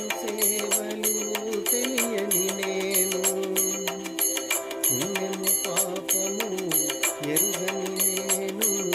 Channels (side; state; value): both; identical; correlation 1.00